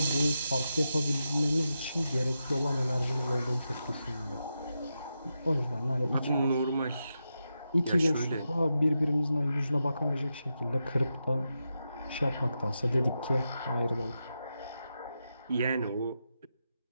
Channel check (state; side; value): inverted; both; correlation -0.88